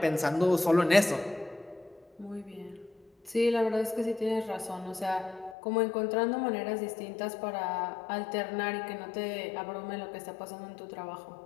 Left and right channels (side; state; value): right; drops out; at 5.6 s